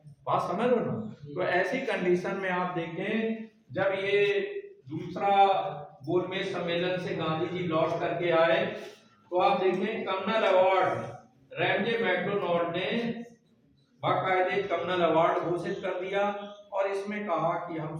बात समझ लो ना। तो ऐसी कंडीशन में आप देखें, जब ये दूसरा गोलमेज सम्मेलन से गांधी जी लौट करके आए तो आप देखें कम्युनल अवार्ड रैमजे मैकडोनाल्ड ने बाकायदे कम्युनल अवार्ड घोषित कर दिया और इसमें कहा कि हम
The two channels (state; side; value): identical; both; correlation 1.00